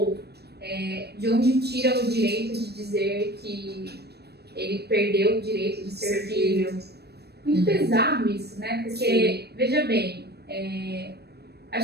de onde tira o direito de dizer que ele perdeu o direito de ser filho? Muito pesado isso, né? Porque, veja bem,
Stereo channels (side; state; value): left; late; 0.47 ms